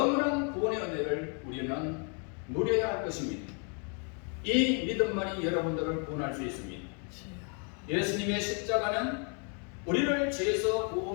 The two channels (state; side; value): quieter; right; 39.5 dB